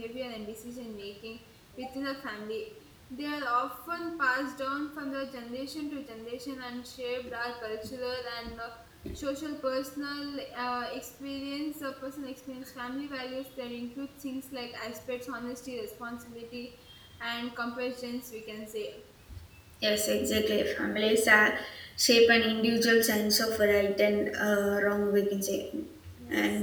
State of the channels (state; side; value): identical; both; correlation 1.00